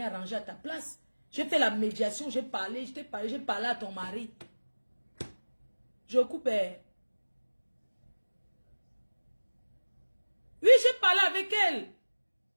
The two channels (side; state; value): both; inverted; correlation -1.00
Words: arranger à ta place. J'ai fait la médiation, j'ai parlé, je t'ai parlé, j'ai parlé à ton mari. Je coupe. Oui, j'ai parlé avec elle.